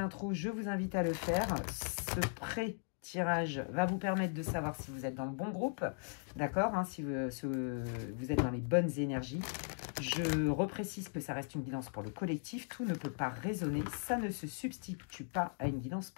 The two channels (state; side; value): silent; right; 52 dB below the other